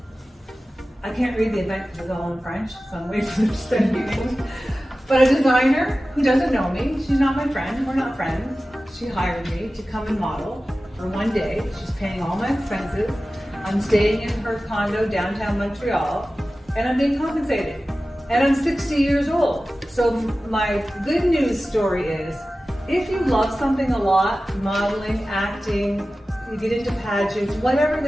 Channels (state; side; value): normal; both; correlation 0.95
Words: I can't read the event because it's all in French, so I'm waiting for them to send me English. But a designer who doesn't know me, she's not my friend, we're not friends. She hired me to come and model for one day. She's paying all my expenses. I'm staying in her condo downtown Montreal, and I'm being compensated. And I'm 60 years old. So my good news story is, if you love something a lot, modeling, acting, you get into pageants, whatever